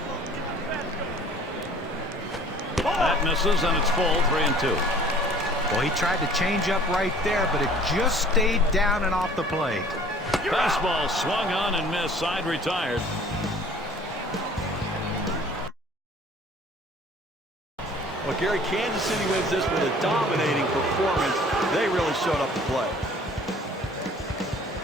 That misses, and it's full, 3-2. Well, he tried to change up right there, but it just stayed down and off the plate. Fastball swung on and missed. Side retired. Well, Gary, Kansas City wins this with a dominating performance. They really showed up to play.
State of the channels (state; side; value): normal; both; correlation 0.51